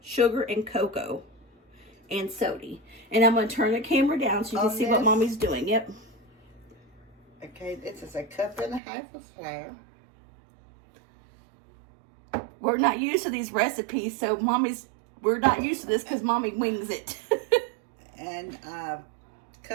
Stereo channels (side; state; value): left; drops out; at 8.8 s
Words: and cocoa, and soda. And I'm going to turn the camera down so you can see what Mommy's doing. Yep. Okay, this is 1.5 cups of flour. We're not used to these recipes, so we're not used to this because Mommy wings it. And